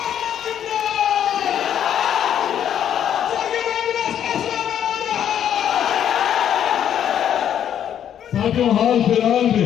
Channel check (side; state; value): right; quieter; 9.7 dB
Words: साथियों, हाल फिलहाल